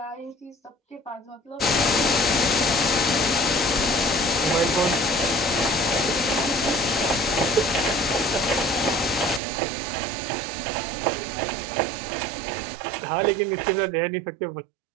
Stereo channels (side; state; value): left; drops out; at 9.4 s